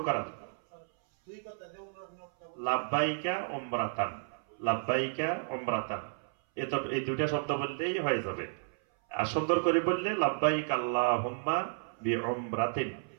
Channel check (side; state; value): left; silent; 56 dB below the other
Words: করা। লাব্বাইকা উমরাতান, লাব্বাইকা উমরাতান, এই 2টা শব্দ বললেই হয়ে যাবে। আর সুন্দর করে বললে লাব্বাইক আল্লাহুম্মা বিউমরাতিন।